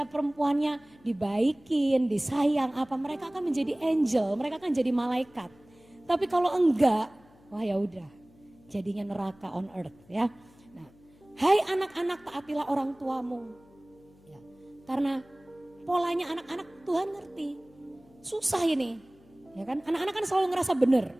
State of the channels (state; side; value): noise; left; hum, 28 dB below the sound